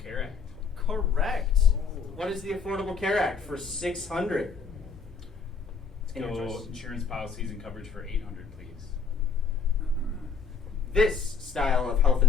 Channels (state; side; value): quieter; right; 5.3 dB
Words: Care Act? Correct. What is the Affordable Care Act for 600? Let's And your go choice. insurance policies and coverage for 800, please. This style of health